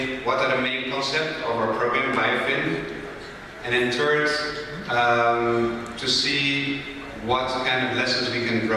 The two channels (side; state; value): both; identical; correlation 1.00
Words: what are the main concepts of our program, BioFin. And then third, to see what kind of lessons we can